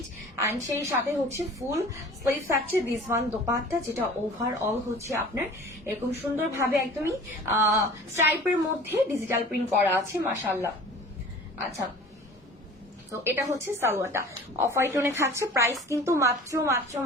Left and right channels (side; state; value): both; normal; correlation 0.43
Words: এন্ড সেই সাথে হচ্ছে ফুল স্লিভ থাকছে দিস ওয়ান দোপাট্টা, যেটা ওভারঅল হচ্ছে আপনার এরকম সুন্দরভাবে একদমই স্ট্রাইপের মধ্যে ডিজিটাল প্রিন্ট করা আছে। মাশাআল্লাহ। আচ্ছা, তো এটা হচ্ছে সালোয়ারটা অফ হোয়াইট টোনে থাকছে। প্রাইস কিন্তু মাত্র মাত্র